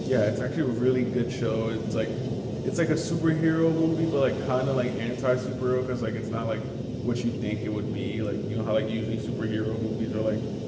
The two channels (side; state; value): both; identical; correlation 1.00